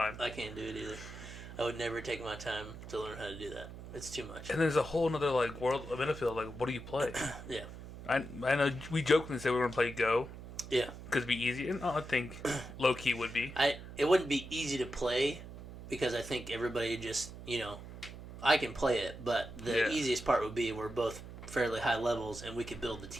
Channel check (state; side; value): noise; right; hum, 13 dB below the sound